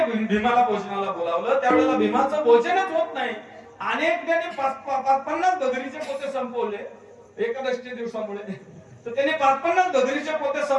भोजनाला बोलावलं त्यावेळेला भीमाचं भोजनच होत नाही. अनेक त्याने 50 बगरीचे पोते संपवले एकादशी दिवसामुळे. तर त्याने 50 बगरीचे पोते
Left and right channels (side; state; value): both; identical; correlation 1.00